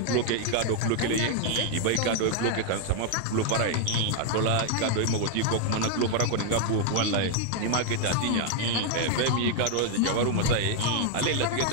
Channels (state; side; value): different; both; correlation 0.00